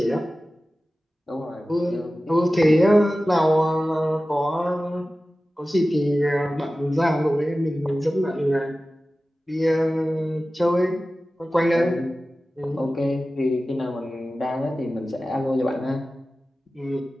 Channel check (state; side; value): normal; both; correlation 0.95